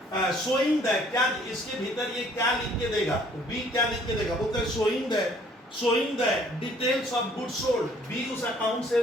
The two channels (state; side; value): normal; both; correlation 0.59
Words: शोइंग द, क्या इसके भीतर ये क्या लिख के देगा, बी क्या लिख के देगा, बोलते हैं showing the details of goods sold। B उस अकाउंट